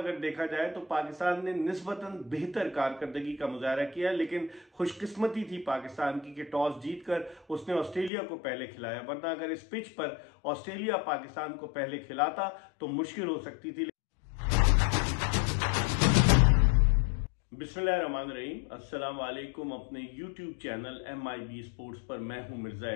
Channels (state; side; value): drops out; right; at 8.1 s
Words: देखा जाए तो पाकिस्तान ने निस्बतन बेहतर कारकर्दगी का मुजाहरा किया, लेकिन खुशकिस्मती थी पाकिस्तान की कि टॉस जीतकर उसने ऑस्ट्रेलिया को पहले खिलाया, वरना अगर इस पिच पर ऑस्ट्रेलिया पाकिस्तान को पहले खिलाता तो मुश्किल हो सकती थी। बिस्मिल्लाहिर्रहमानिर्रहीम, अस्सलाम वालेकुम। अपने यूट्यूब चैनल MIB स्पोर्ट्स पर मैं हूं मिर्जा